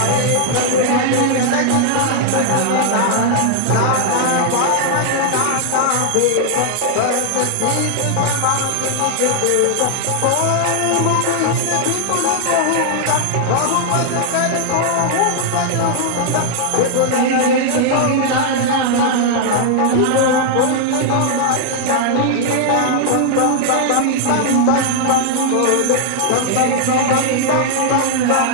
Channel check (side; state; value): both; different; correlation 0.00